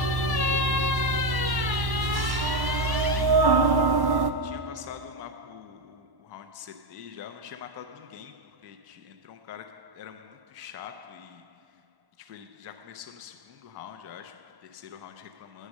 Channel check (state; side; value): late; left; 1.1 ms